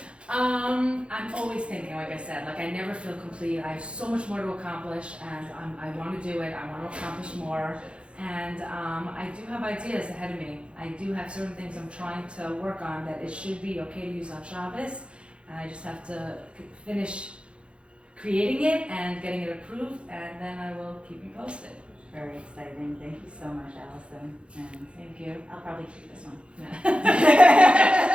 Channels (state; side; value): late; left; 0.058 ms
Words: I'm always thinking, like I said, I never feel complete. I have so much more to accomplish, and I want to do it. I want to accomplish more, and I do have ideas ahead of me. I do have certain things I'm trying to work on that it should be okay to use on Shabbos, and I just have to finish creating it and getting it approved, and then I will keep you posted. Very exciting. Thank you so much, Allison. And thank you. I'll probably keep this one.